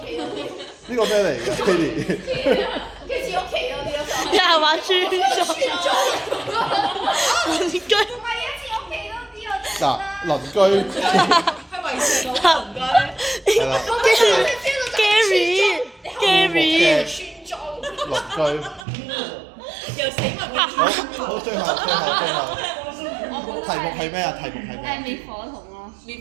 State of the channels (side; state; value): left; drops out; at 18.9 s